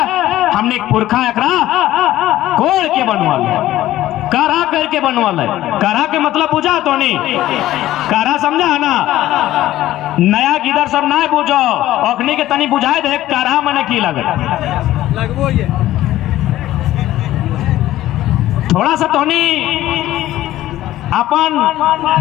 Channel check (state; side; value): quieter; right; 14.6 dB